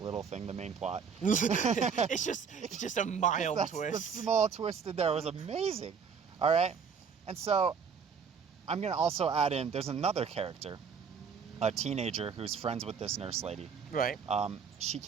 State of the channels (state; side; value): quieter; left; 6.3 dB